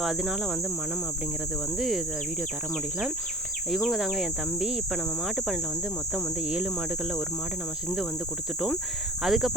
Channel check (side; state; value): both; normal; correlation 0.43